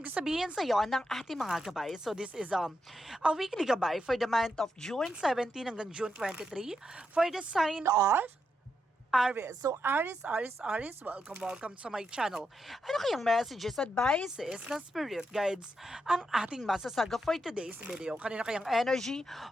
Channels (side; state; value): both; normal; correlation 0.83